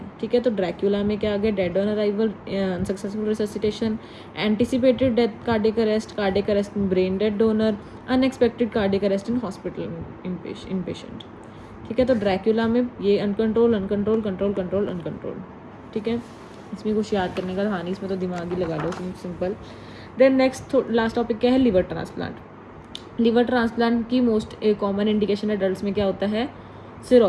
ठीक है। तो ड्रैक्यूला में क्या आ गया, dead on arrival, unsuccessful resuscitation, anticipated death cardiac arrest in brain dead donor, unexpected cardiac arrest in hospital in patient, ठीक है। तो ड्रैक्यूला में ये uncontrol uncontrol control control uncontrol, ठीक है। इसमें कुछ याद करने का था नहीं, इसमें तो दिमाग ही लगा लो, simple. Then next last topic क्या है, लिवर ट्रांसप्लांट। लिवर ट्रांसप्लांट की मोस्ट कॉमन इंडिकेशन एडल्ट्स में क्या होता है,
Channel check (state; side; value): identical; both; correlation 1.00